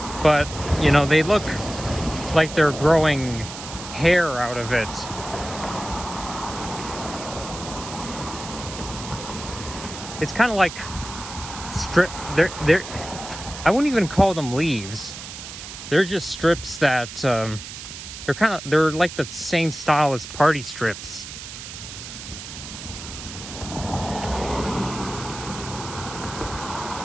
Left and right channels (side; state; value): right; noise; hiss, 11 dB below the sound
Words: But, you know, they look like they're growing hair out of it. It's kind of like they're I wouldn't even call them leaves. They're just strips that they're like the same style as party strips.